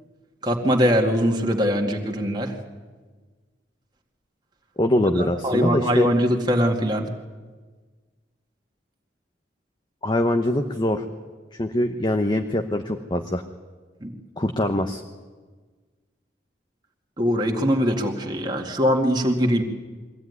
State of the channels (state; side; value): normal; both; correlation 0.70